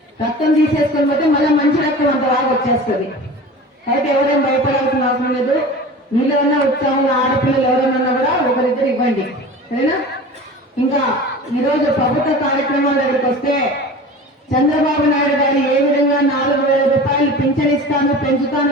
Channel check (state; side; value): normal; both; correlation 0.36